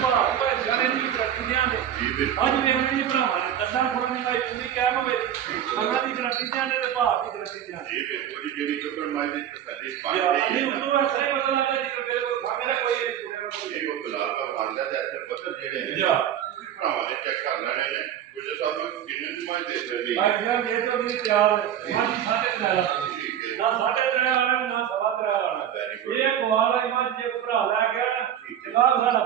ਭਾਅ ਭਾਈ ਜਾਨੇ ਨਹੀਂ ਕਰਤੀ ਦਿਆਂਗੇ ਜੀ ਬਿਲਕੁਲ। ਅੱਜ ਵੇਖਣ ਜੀ ਭਰਾਵਾਂ ਨੇ ਦੱਸਾਂ ਕੋਲ ਨਹੀਂ ਭਾਈ ਤੁਸੀਂ ਕਿਹਾ ਮਵੇ ਅੱਲਾਹ ਦੀ ਗਰੰਟੀ ਦਿਆਂਗੇ ਤੇ ਭਾਅ ਦੀ ਗਰੰਟੀ ਦਿਆਂਗੇ ਜੀ ਬਿਲਕੁਲ ਜੀ। ਜਿਹੜੀ ਚੁੱਕਣ ਮਾਈ ਦੀ ਤਸੱਲੀ ਪਾਣੀ ਯਾਰ ਹੈ ਨਹੀਂ ਨਾ, ਉਦੋਂ ਐਸਾ ਹੀ ਪਤਾ ਲੱਗਾ ਜੀ ਮੇਰੇ ਕੋਲ ਖਾਣੇ ਦਾ ਕੋਈ ਨਹੀਂ ਇਹ ਉਹ ਗੁਲਾਬ ਦਾ ਫਾਂਦਾ ਤੇ ਇੱਥੇ ਪੱਥਰ ਜਿਹੜੇ ਨੇ ਜਾ। ਤੁਸੀਂ ਭਰਾਵਾਂ ਨੇ ਚੈੱਕ ਕਰ ਲੈਣੇ ਨੇ ਗੁੱਜਰ ਸਾਹਿਬ ਕਿੰਨੇ ਦੀ ਮਾਈ ਦੇ ਸਕਦੇ ਭਾਈ ਯਾਰ ਜੇ ਤੋਂ ਨਹੀਂ ਤਿਆਰ ਮਾਜੀ ਸਾਡੇ ਤੇ ਲਾ ਠੀਕ ਹੈ। ਨਾ ਸਾਡੇ ਤੇ ਆਣਾ ਨਾ ਸਵਾ ਤੇ ਆਣਾ Very good. ਇਹ ਕੁਆਰ ਆਈ ਮੱਝ ਜੇ ਕੋਈ ਭਰਾ ਲੈ ਗਿਆ ਨਾ ਠੀਕ ਹੈ। ਜਨਾਬ ਸਾਡਾ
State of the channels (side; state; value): left; quieter; 10.3 dB